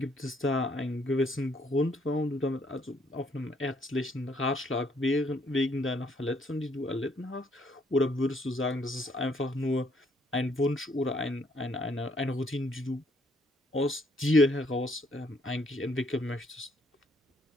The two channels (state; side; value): normal; both; correlation 0.68